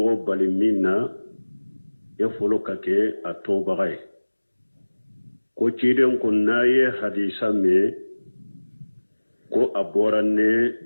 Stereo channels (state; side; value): inverted; both; correlation -1.00